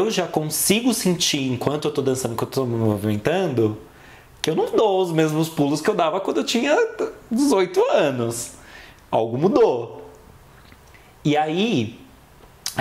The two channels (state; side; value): identical; both; correlation 1.00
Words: já consigo sentir, enquanto eu tô dançando, enquanto eu tô me movimentando, que eu não dou os mesmos pulos que eu dava quando eu tinha 18 anos. Algo mudou. E aí,